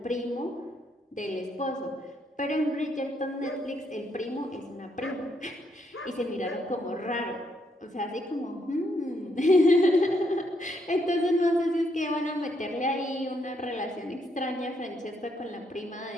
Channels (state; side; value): normal; both; correlation 0.75